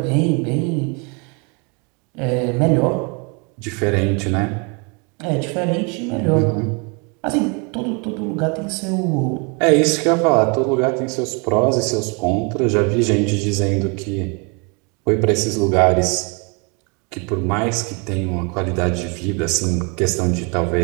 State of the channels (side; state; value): left; quieter; 32.8 dB